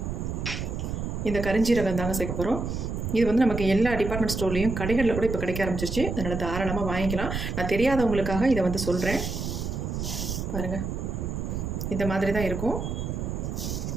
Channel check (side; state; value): right; noise; rumble, 4 dB below the sound